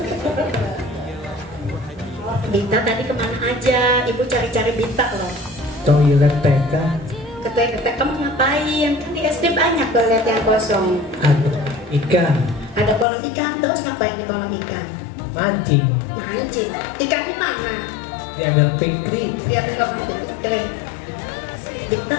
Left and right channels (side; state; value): right; drops out; at 13.1 s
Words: Dita tadi kemana aja? Ibu cari-cari Dita loh. Toilet TK. Ke toilet kamu ngapain? Kan di SD banyak toilet yang kosong. Ada ikan. Ada kolam ikan, terus ngapain di kolam ikan? Mancing. Mancing. Ikannya mana? Diambil pikri. Dia bilang kering. Kita